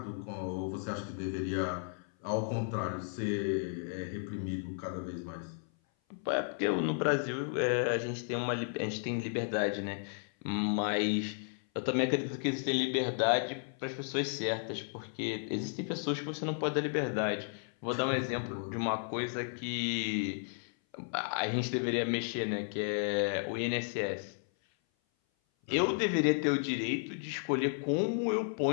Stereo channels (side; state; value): right; silent; 55 dB below the other